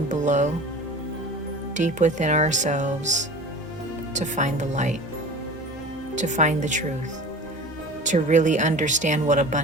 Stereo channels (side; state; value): both; normal; correlation 0.38